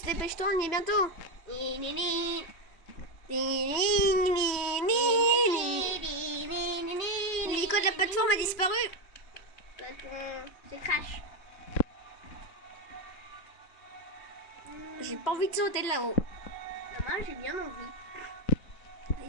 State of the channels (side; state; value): right; late; 2.6 ms